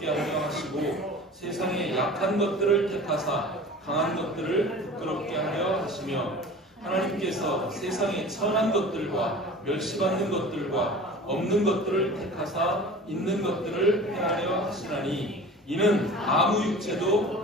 하려 하시고 세상의 약한 것들을 택하사 강한 것들을 부끄럽게 하려 하시며 하나님께서 세상의 천한 것들과 멸시받는 것들과 없는 것들을 택하사 있는 것들을 행하려 하시나니 이는 아무 육체도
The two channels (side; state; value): both; normal; correlation 0.39